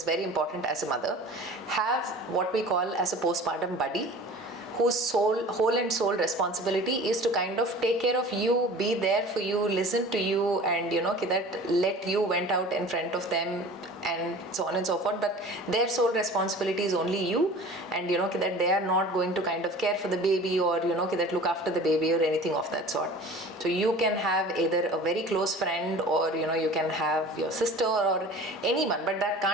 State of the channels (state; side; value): normal; both; correlation 0.41